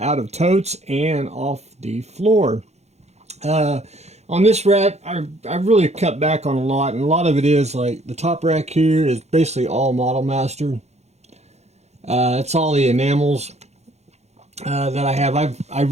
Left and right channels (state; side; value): late; left; 0.32 ms